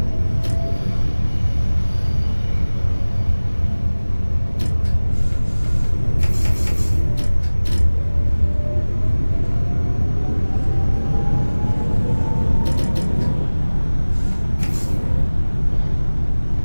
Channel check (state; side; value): inverted; both; correlation -1.00